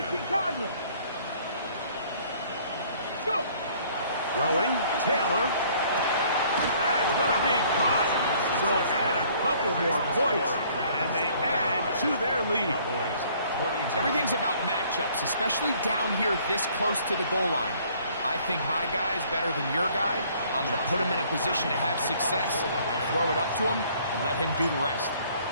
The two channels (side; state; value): both; inverted; correlation -0.59